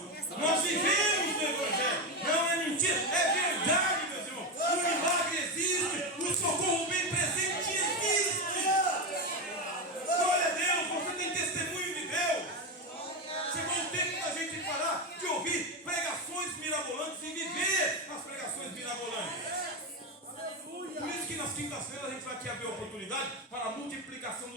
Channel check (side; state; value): both; normal; correlation 0.13